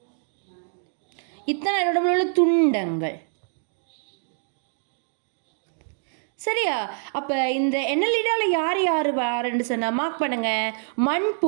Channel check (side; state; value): left; silent; digital silence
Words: இத்தனை உடம்புல உள்ள துண்டங்கள். சரியா? அப்போ இந்த எண்ணலிடாவில் யார் யார் வாருன்னு சொன்னால் மார்க் பண்ணுங்க.